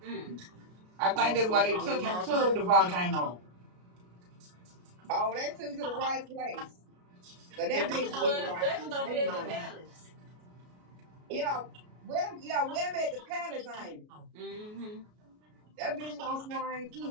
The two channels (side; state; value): left; late; 33 ms